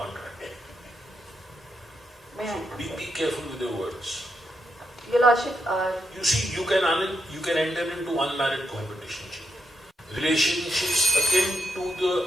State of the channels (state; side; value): normal; both; correlation 0.81